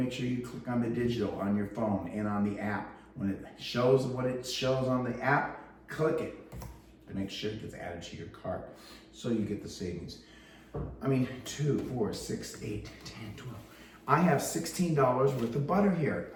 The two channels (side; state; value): both; identical; correlation 1.00